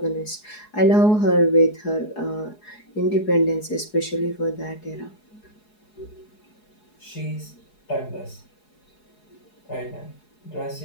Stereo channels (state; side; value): late; right; 4.8 ms